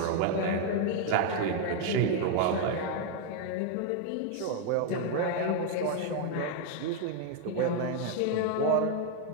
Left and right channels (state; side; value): different; both; correlation 0.00